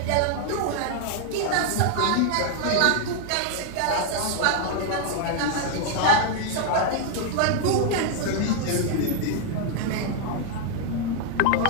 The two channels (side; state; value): both; different; correlation 0.00